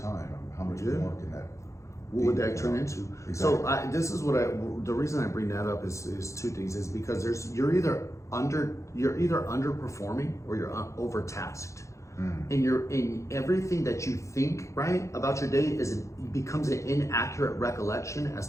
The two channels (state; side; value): late; right; 0.15 ms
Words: I mean, how much more can that? What would that turn into? Exactly. So this is the reason I bring that up is 2 things. Is because you're either underperforming or you're overtasked. And you're in everything that you think right about your day becomes an inaccurate recollection as